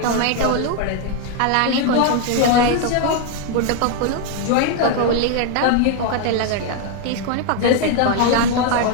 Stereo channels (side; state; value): both; different; correlation 0.01